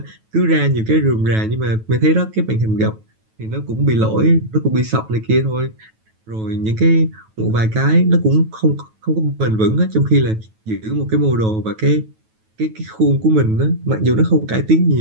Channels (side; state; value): left; late; 9.2 ms